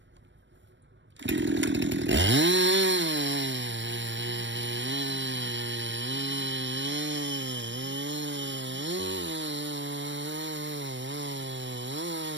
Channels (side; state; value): left; late; 0.53 ms